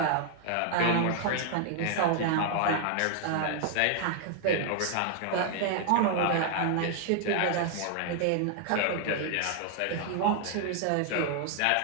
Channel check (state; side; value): different; both; correlation 0.00